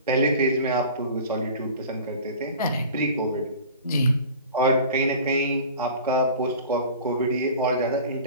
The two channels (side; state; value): both; inverted; correlation -0.40